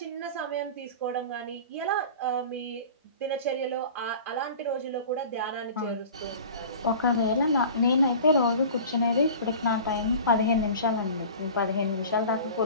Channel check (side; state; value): both; inverted; correlation -0.40